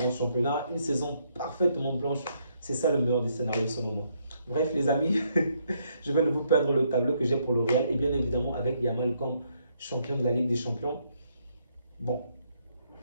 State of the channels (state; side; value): inverted; both; correlation -0.73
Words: championnat, une saison parfaitement blanche. C'est ça le meilleur des scénarios selon moi. Bref les amis, je vais ne vous perdre le tableau que j'ai pour le Real et bien évidemment avec Yamal comme champion de la Ligue des Champions. Bon,